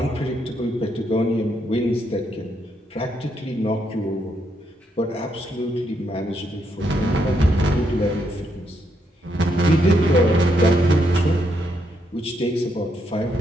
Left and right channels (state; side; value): normal; both; correlation 0.77